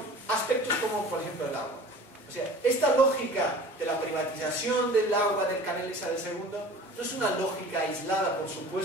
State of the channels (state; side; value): normal; both; correlation 0.43